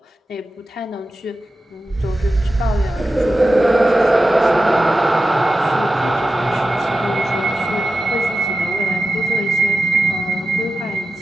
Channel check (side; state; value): both; normal; correlation 0.92